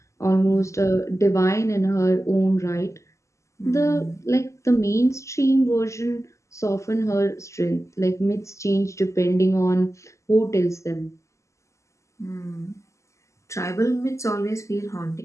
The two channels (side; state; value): right; late; 0.14 ms